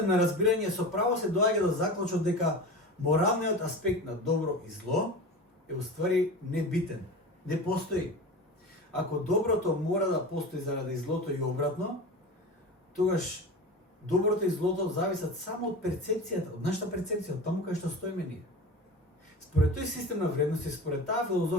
на разбирање со право се доаѓа до заклучок дека моралниот аспект на добро и зло е уствари небитен, не постои. Ако доброто мора да постои заради злото и обратно, тогаш доброто и злото зависат само од перцепцијата, од нашата перцепција, од таму кај што стоиме ние. Според тој систем на вредности, според таа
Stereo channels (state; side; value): normal; both; correlation 0.31